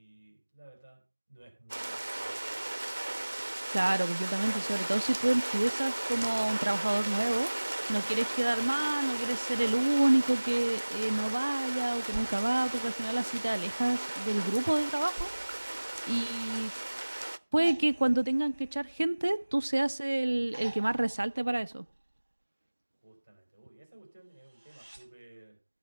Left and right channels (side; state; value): both; inverted; correlation -1.00